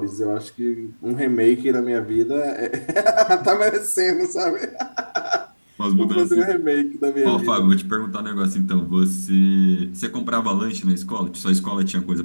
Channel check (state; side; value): inverted; both; correlation -1.00